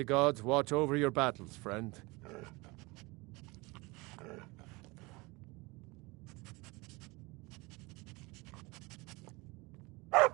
gods watch over your battles, friend.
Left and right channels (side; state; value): left; quieter; 24.6 dB